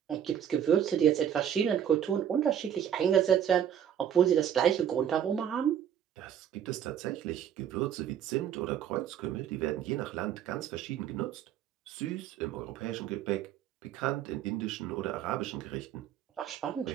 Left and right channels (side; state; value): left; quieter; 9.4 dB